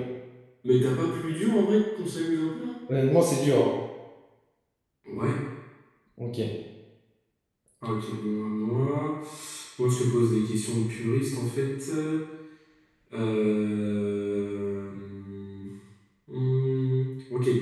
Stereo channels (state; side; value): identical; both; correlation 1.00